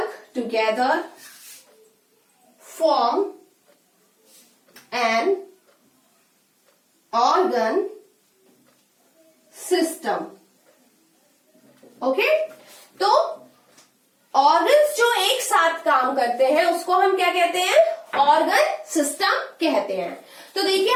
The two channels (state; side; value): identical; both; correlation 1.00